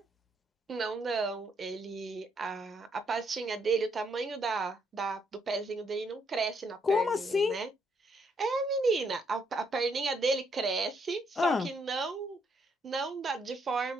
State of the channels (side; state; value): both; normal; correlation 0.73